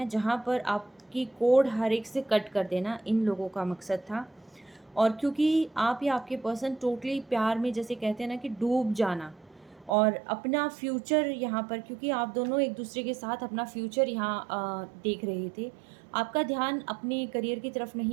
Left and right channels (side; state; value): left; drops out; at 10.0 s